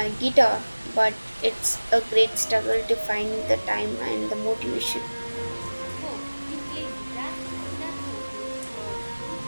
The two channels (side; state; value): both; inverted; correlation -1.00